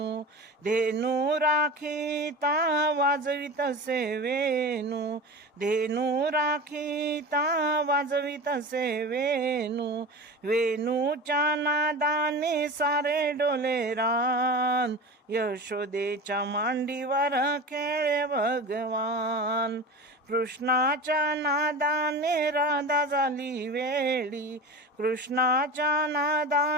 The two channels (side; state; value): both; normal; correlation 0.30